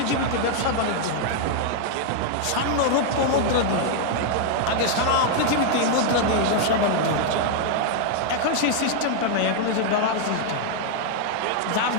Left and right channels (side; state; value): both; different; correlation 0.00